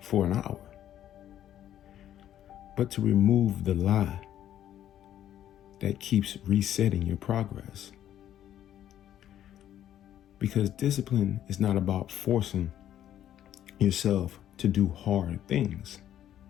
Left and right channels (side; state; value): right; quieter; 11.3 dB